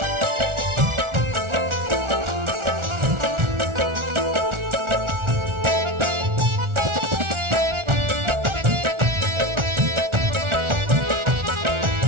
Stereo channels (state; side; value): late; left; 1.4 ms